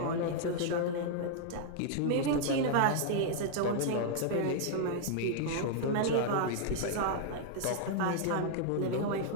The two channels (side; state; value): both; different; correlation -0.01